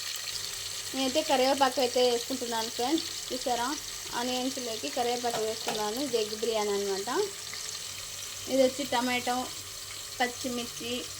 నేనైతే కరివేపాకు అయితే వేసుకుంటున్నాను ఫ్రెండ్స్. చూసారా, ఆనియన్స్లోకి కరివేపాకు వేస్తున్నాను. ఇది ఎగ్ బిర్యానీ అనమాట. ఇది వచ్చి టమాటో, పచ్చిమిర్చి,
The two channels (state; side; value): identical; both; correlation 1.00